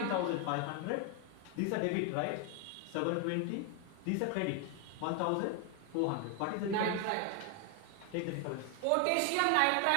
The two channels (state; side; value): different; both; correlation 0.01